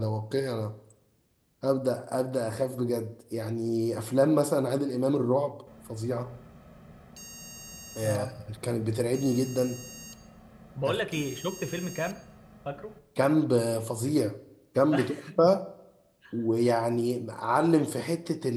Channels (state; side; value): identical; both; correlation 1.00